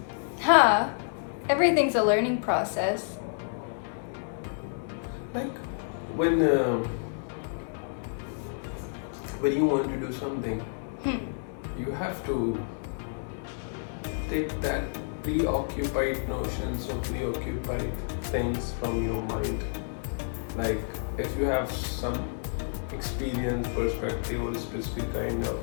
Huh? Everything's a learning process. Like when you want to do something, you have to take that preoccupied notions or preoccupied things from your mind. Like if you have some experience, perspective, or a specific kind of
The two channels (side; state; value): right; silent; digital silence